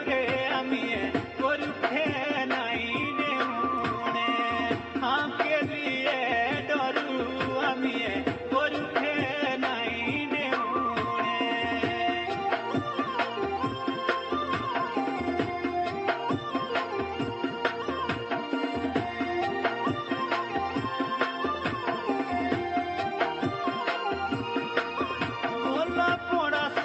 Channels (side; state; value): both; identical; correlation 1.00